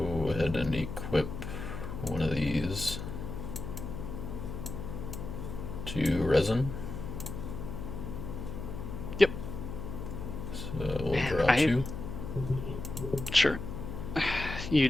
ahead and equip one of these to resin. Yep. So we'll Man, draw two. Sure. You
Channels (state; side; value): noise; left; hum, 7 dB below the sound